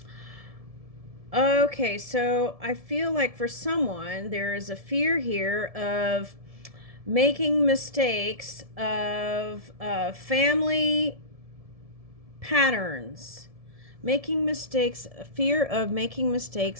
Okay, so I feel like for someone, there is a fear here of making mistakes of family patterns. Making mistakes, fear of making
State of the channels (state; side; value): late; left; 1.7 ms